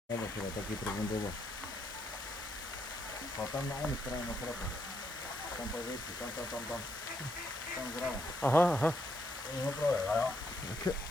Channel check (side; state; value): both; normal; correlation 0.76